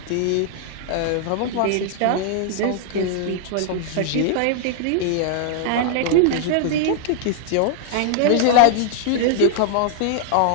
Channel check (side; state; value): both; different; correlation 0.00